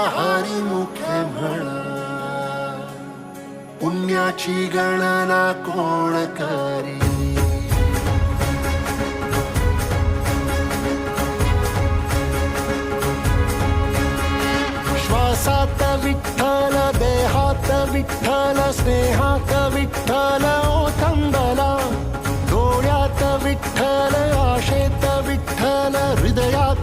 हरिमुखे म्हणा, पुण्याची गणना कोण करी. श्वासात विठ्ठल, देहात विठ्ठल, स्नेहात विठ्ठल ओथंबला. डोळ्यात विठ्ठल, आशेत विठ्ठल,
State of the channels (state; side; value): identical; both; correlation 1.00